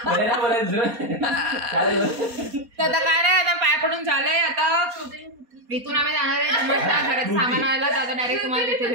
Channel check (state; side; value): late; left; 4.2 ms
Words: बोलायचं. तर आता काय नाही, आता पाय पडून झालंय. आता इथून आम्ही जाणार आहे घरात सामान आणायला. आता डायरेक्ट तुम्हाला तिथे